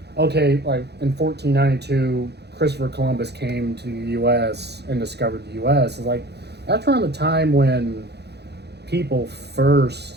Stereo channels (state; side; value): late; left; 0.48 ms